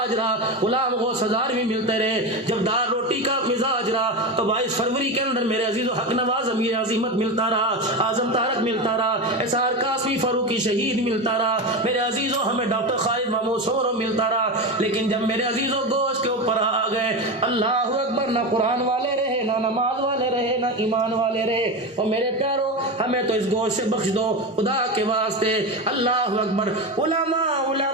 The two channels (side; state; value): both; normal; correlation 0.19